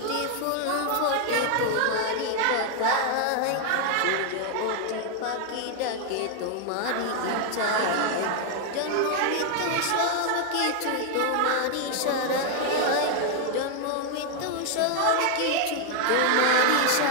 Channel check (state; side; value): different; both; correlation 0.00